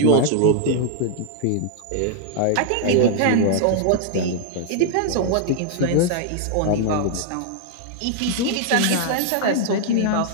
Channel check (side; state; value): both; different; correlation -0.01